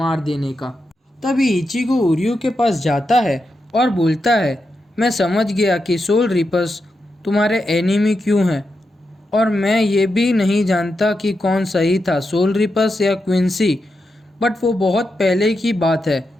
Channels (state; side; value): normal; both; correlation 0.87